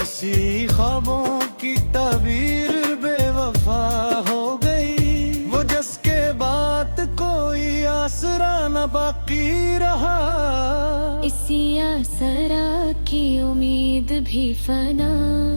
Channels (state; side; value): inverted; both; correlation -1.00